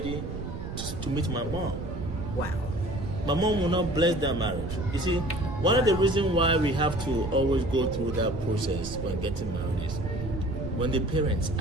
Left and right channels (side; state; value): right; noise; rumble, 7 dB below the sound